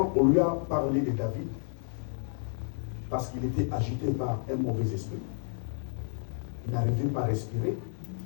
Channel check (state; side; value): silent; right; 57 dB below the other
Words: on lui a parlé de David, parce qu'il était agité par un mauvais esprit, il n'arrivait pas à respirer,